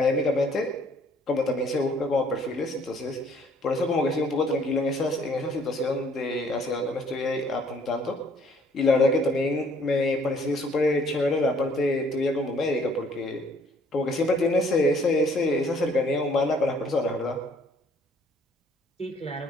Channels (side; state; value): both; normal; correlation 0.61